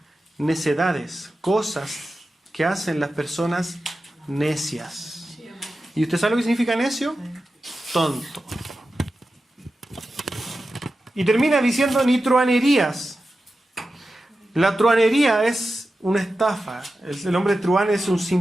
necedades, cosas que hacen las personas necias. ¿Y usted sabe lo que significa necio? Tonto. Y termina diciendo ni truanerías. La truanería es una estafa. El hombre truán es un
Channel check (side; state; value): both; normal; correlation 0.92